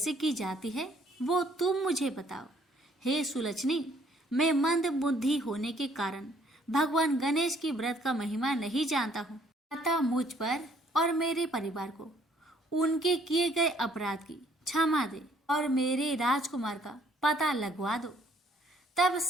की जाती है वो तुम मुझे बताओ। हे सुलक्षणी, मैं मंद बुद्धि होने के कारण भगवान गणेश की व्रत का महिमा नहीं जानता हूँ। अतः मुझ पर और मेरे परिवार को उनके किए गए अपराध की क्षमा दे और मेरे राजकुमार का पता लगवा दो। तब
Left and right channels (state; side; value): normal; both; correlation 0.63